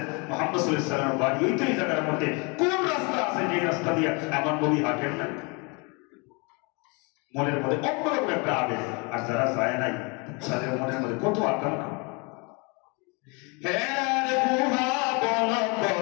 মুহাম্মদ সাল্লাল্লাহু আলাইহি ওয়াসাল্লামের বাড়ি ওই তো এই জায়গার মধ্যে। কোন রাস্তা আছে যে রাস্তা দিয়ে আমার নবী হাঁটেন না? মনের মধ্যে অন্যরকম একটা আবেগ। আর যারা যায় নাই তাদের মনের মধ্যে কত আকাঙ্ক্ষা।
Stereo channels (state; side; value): quieter; right; 30.9 dB